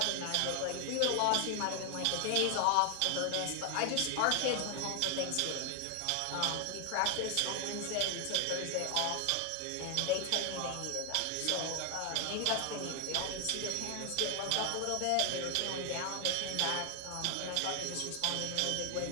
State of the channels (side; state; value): both; different; correlation 0.00